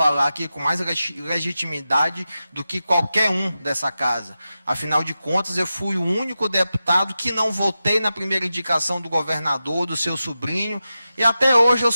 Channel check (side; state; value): both; inverted; correlation -0.92